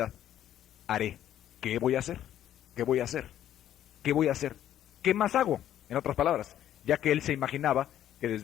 haré. ¿Qué voy a hacer? ¿Qué voy a hacer? ¿Qué voy a hacer? ¿Qué más hago? En otras palabras, ya que él se imaginaba que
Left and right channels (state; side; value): quieter; right; 11.4 dB